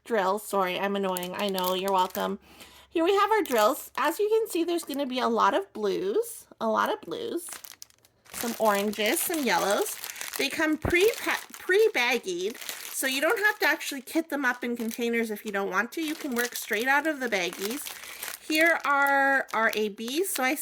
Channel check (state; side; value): identical; both; correlation 1.00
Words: drills. Sorry, I'm annoying. I know, you're welcome. Here we have our drills. As you can see, there's going to be a lot of blues, some oranges, some yellows. They come pre-baggied, so you don't have to actually kit them up in containers if you don't want to. You can work straight out of the baggies. Here are our ABs. So I